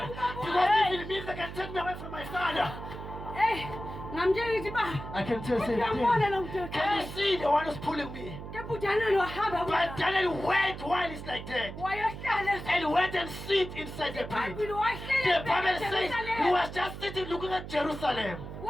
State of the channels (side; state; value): right; noise; hum, 10 dB below the sound